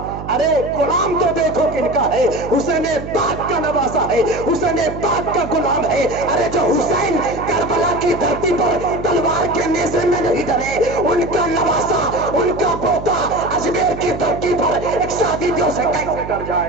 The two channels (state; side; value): noise; right; hum, 10 dB below the sound